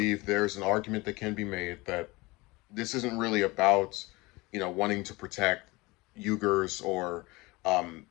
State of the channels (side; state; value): right; quieter; 23.0 dB